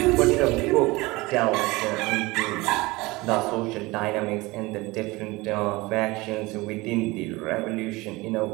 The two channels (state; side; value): quieter; left; 22.0 dB